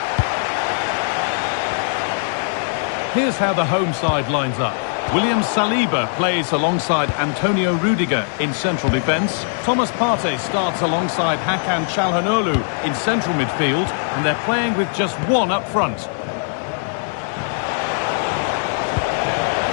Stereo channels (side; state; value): right; silent; digital silence